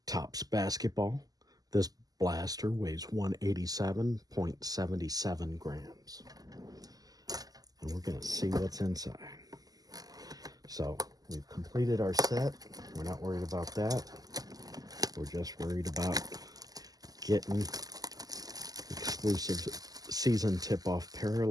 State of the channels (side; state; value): left; late; 0.18 ms